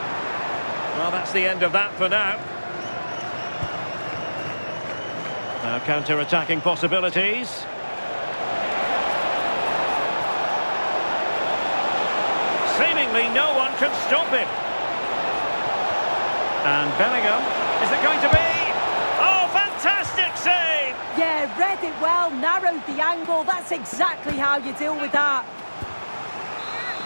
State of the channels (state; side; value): inverted; both; correlation -1.00